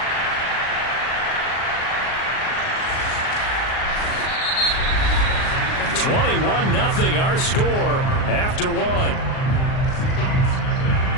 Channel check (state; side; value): late; right; 38 ms